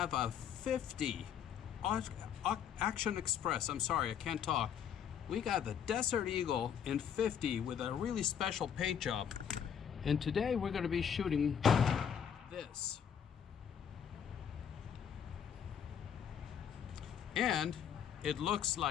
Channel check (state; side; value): quieter; right; 8.3 dB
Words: a 50 Action Express. I'm sorry, I can't talk. We got the Desert Eagle in 50 with a really special paint job, and today we're going to be shooting this. And it looks